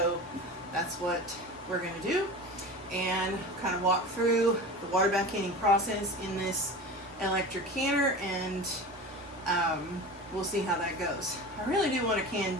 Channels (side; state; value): both; normal; correlation 0.32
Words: that's what we're going to do. And kind of walk through the water bath canning process in this electric canner, and we'll see how that goes. I really do want to can